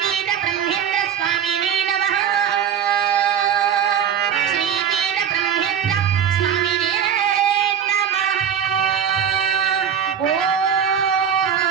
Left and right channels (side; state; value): left; quieter; 8.6 dB